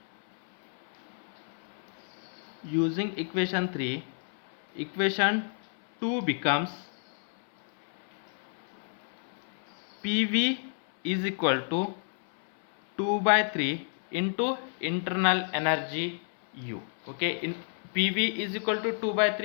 equation 2 becomes PV is equal to 2 by 3 into internal energy U. Okay, in PV is equal to 2 by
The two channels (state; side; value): silent; right; 58 dB below the other